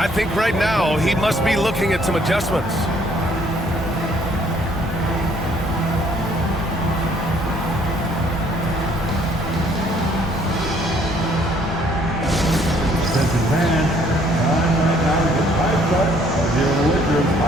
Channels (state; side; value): normal; both; correlation 0.63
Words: think right now he must be looking at some adjustments. Advantage. Time right now to get hyped up of your Lakers